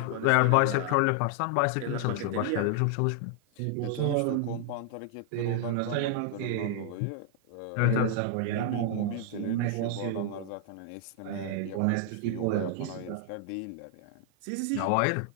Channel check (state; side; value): different; both; correlation 0.00